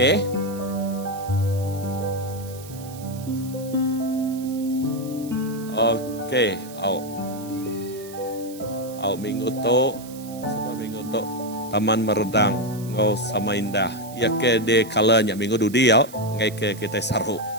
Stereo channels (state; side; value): noise; right; hiss, 18 dB below the sound